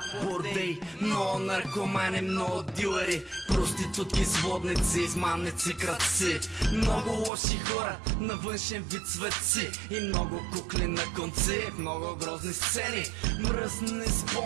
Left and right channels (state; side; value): drops out; left; at 7.3 s